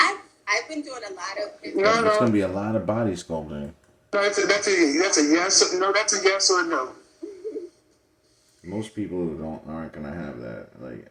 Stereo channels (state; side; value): identical; both; correlation 1.00